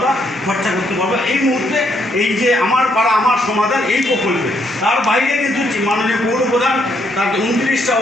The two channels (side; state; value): both; normal; correlation 0.73